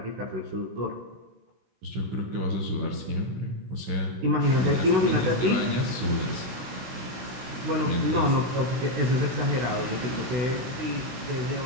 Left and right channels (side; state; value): left; late; 16 ms